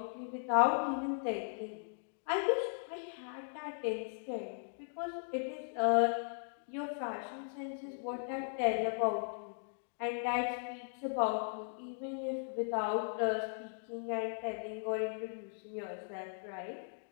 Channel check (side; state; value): right; silent; digital silence